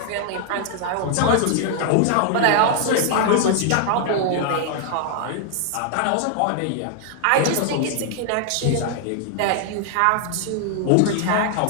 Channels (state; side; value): different; both; correlation 0.00